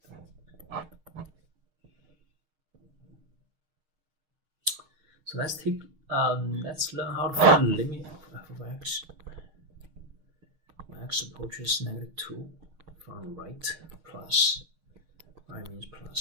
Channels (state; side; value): late; left; 6.4 ms